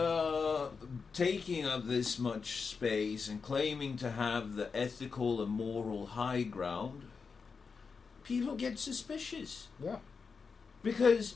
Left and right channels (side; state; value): right; quieter; 5.2 dB